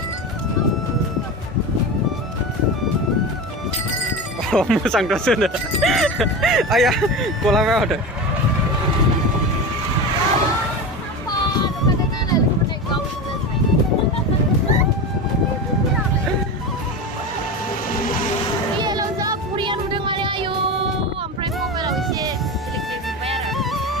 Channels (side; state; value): both; normal; correlation 0.24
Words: मोजां दसनो आया गलांबाय माथो